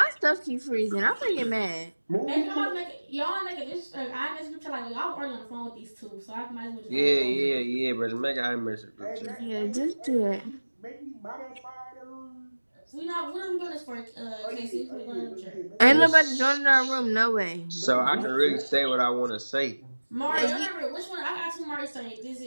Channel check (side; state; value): both; inverted; correlation -1.00